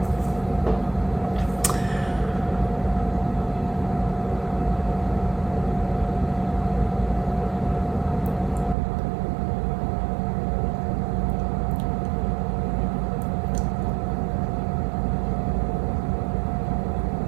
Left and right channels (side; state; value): left; drops out; at 8.8 s